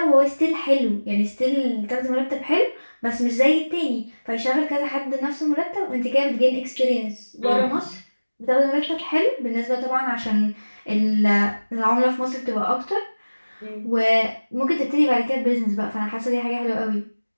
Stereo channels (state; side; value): inverted; both; correlation -1.00